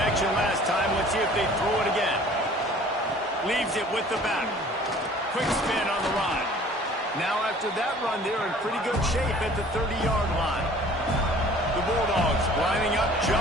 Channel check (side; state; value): both; normal; correlation 0.50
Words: last time. Let's see if they throw it again. Leaves it with the back. Quick spin on the run. Now after that run, they're in pretty good shape at the 30-yard line. The Bulldogs lining up,